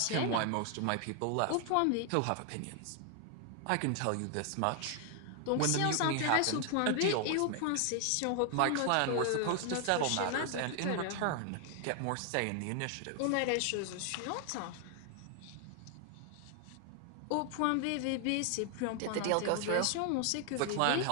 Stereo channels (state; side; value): different; both; correlation 0.00